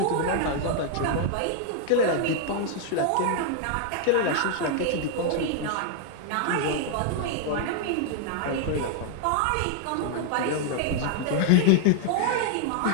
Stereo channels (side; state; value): both; different; correlation 0.00